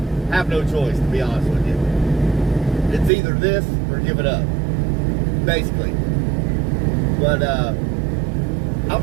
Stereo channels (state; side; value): drops out; left; at 3.1 s